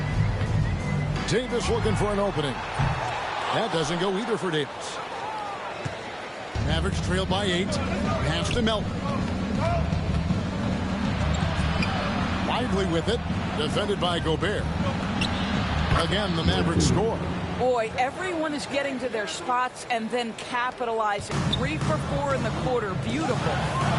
Davis looking for an opening. That doesn't go either for Davis. Mavericks trailed by 8. Pass to Melton. Lively with it. Defended by Gobert. Again, the Mavericks score. Boy, everyone is getting to their spots and then capitalizing. 3 for 4 in the quarter. Beautiful.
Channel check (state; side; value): identical; both; correlation 1.00